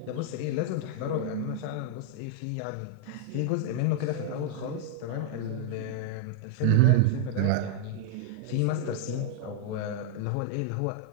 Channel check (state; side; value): different; both; correlation -0.01